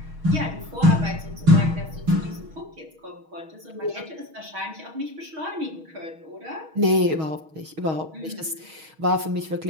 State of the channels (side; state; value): left; late; 6.3 ms